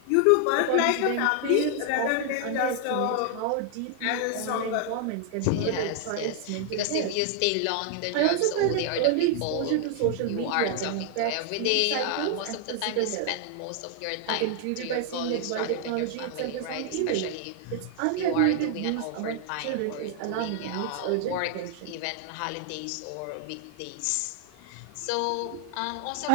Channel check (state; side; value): different; both; correlation 0.00